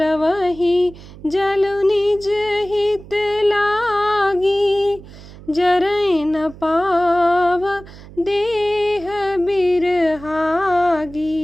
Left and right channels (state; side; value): noise; right; hum, 18 dB below the sound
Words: जलु निज हित लागी, जरई न पाव देह